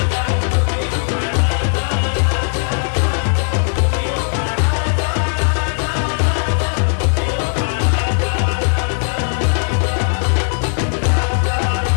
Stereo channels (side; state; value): right; silent; digital silence